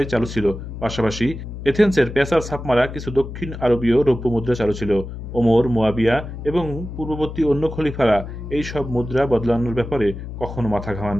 চালু ছিল। পাশাপাশি এথেন্সের পেসার ছাপমারা কিছু দক্ষিণ আরবীয় রৌপ্য মুদ্রা চালু ছিল। ওমর, মুয়াবিয়া এবং পূর্ববর্তী অন্য খলিফারা এই সব মুদ্রা বদলানোর ব্যাপারে কখনো মাথা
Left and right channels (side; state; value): left; noise; hum, 9 dB below the sound